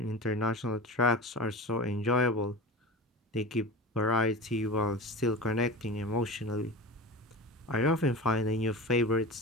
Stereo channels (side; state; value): both; normal; correlation 0.30